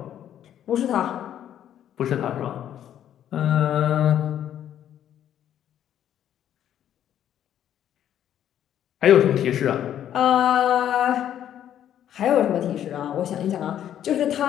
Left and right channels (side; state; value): right; quieter; 10.6 dB